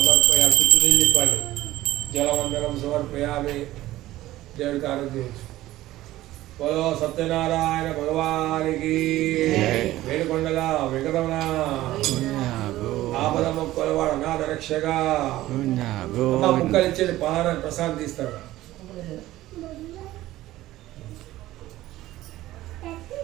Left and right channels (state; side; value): quieter; left; 15.8 dB